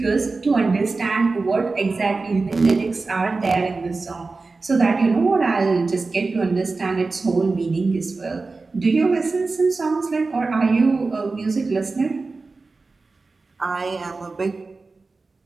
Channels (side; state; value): left; quieter; 3.8 dB